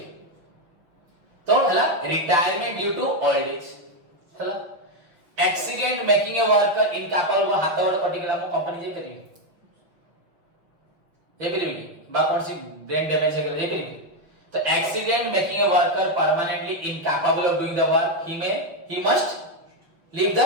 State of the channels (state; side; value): late; left; 6.2 ms